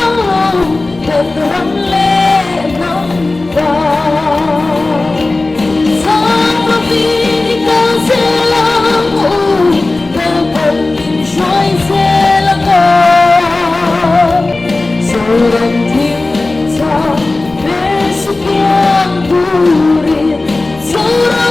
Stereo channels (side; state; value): right; quieter; 3.2 dB